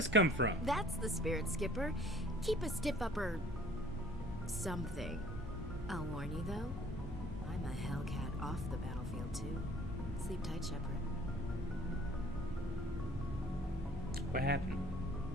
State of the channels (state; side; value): normal; both; correlation 0.54